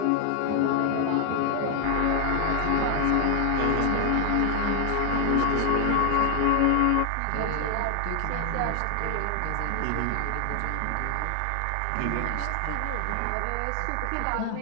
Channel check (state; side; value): different; both; correlation 0.00